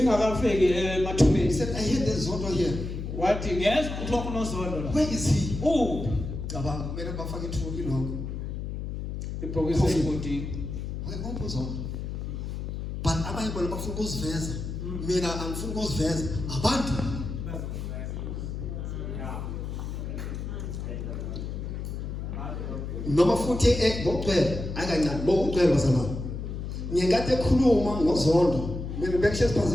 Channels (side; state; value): left; noise; hum, 5 dB below the sound